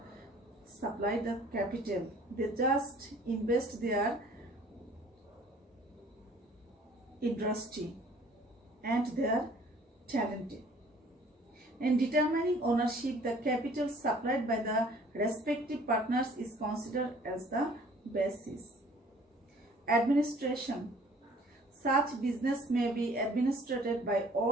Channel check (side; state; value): both; normal; correlation 0.54